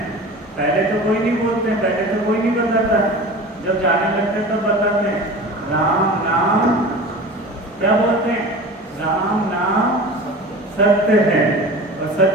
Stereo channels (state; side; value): normal; both; correlation 0.35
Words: पहले तो कोई नहीं बोलते, पहले तो कोई नहीं बताता, जब जाने लगते तब बताते हैं। राम नाम क्या बोलते हैं? राम नाम सत्य है, और